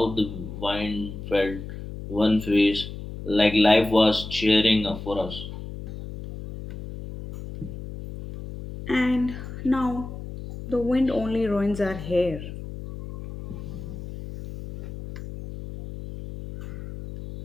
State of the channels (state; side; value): noise; left; hum, 10 dB below the sound